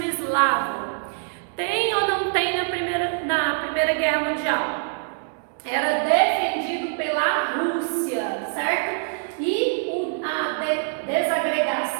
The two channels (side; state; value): left; silent; 62 dB below the other